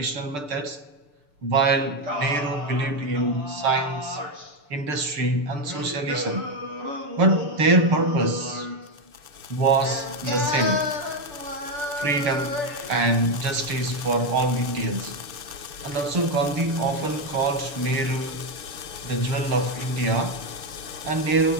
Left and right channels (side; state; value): left; late; 6.8 ms